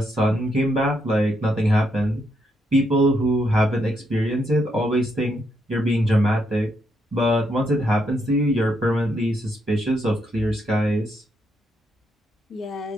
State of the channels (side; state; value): both; normal; correlation 0.78